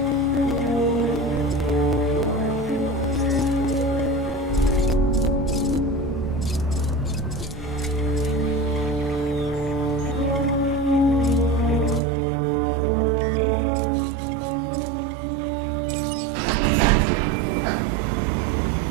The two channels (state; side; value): drops out; left; at 12.0 s